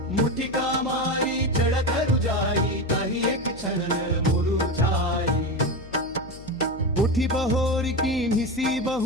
मुठिका मारी चढ़त रुजाई कही एक क्षण मुरुझाई उठी बहोर की निसी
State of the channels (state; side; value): noise; left; hum, 17 dB below the sound